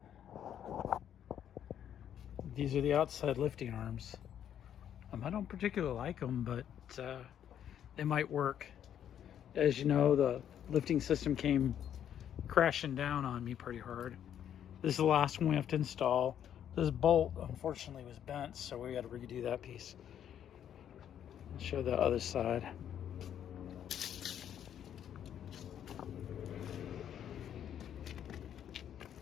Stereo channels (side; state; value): right; quieter; 9.7 dB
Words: These are the outside lifting arms. I don't particularly like them, but they might work. As you know, the lifting system came crashing down on me pretty hard. This is the last one we have to install. This bolt, unfortunately, was bent, so we got to redo that piece. I'll show the other side.